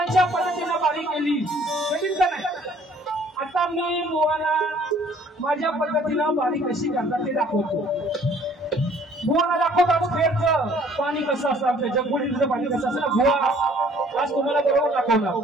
पद्धतीने बारी केली कठीण का नाही आता मी बुवाला माझ्या पद्धतीने बारी कशी करतात ते दाखवतो बुवाला दाखवतात फेरचं पाणी कसं असतं आमच्या जगबुडीचं पाणी कसं असतं ना बुवा आज तुम्हाला बरोबर दाखवणार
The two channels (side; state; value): both; normal; correlation 0.57